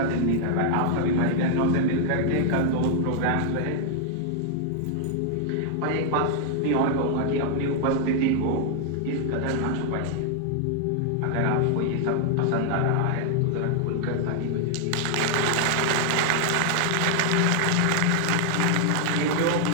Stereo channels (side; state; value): both; different; correlation 0.00